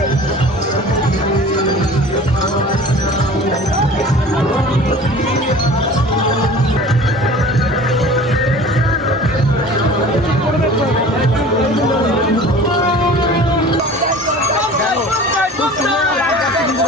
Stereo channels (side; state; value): both; normal; correlation 0.42